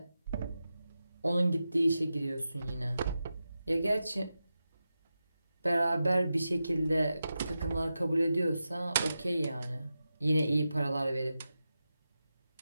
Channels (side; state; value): both; inverted; correlation -0.91